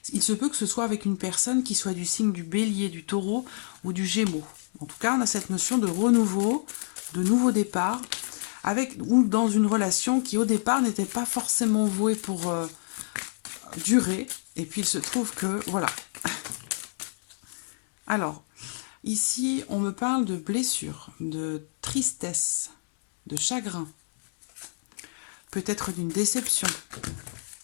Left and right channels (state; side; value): silent; right; digital silence